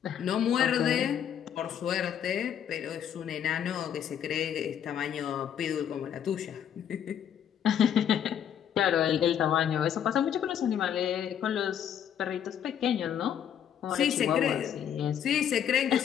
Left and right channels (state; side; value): quieter; right; 9.2 dB